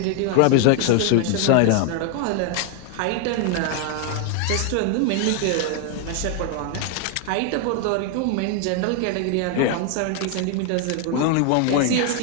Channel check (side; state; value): both; different; correlation 0.00